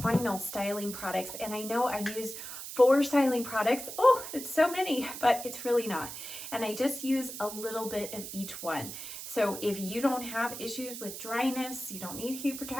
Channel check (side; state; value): right; noise; hiss, 9 dB below the sound